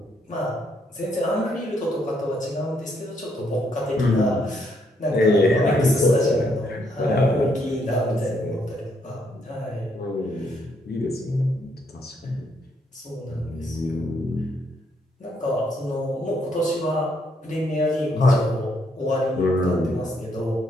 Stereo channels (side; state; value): both; normal; correlation 0.73